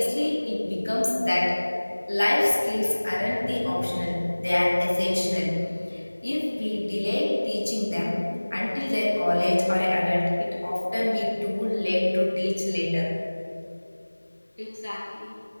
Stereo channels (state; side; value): inverted; both; correlation -1.00